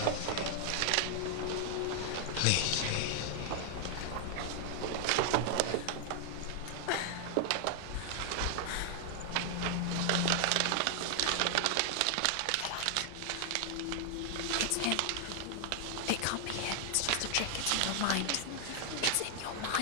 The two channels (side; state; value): both; different; correlation 0.00